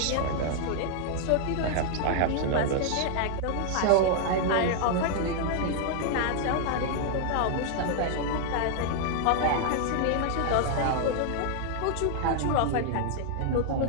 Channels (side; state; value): both; different; correlation 0.00